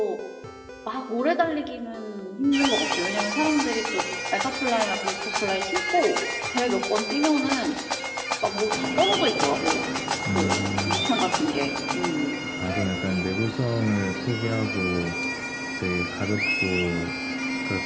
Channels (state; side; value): identical; both; correlation 1.00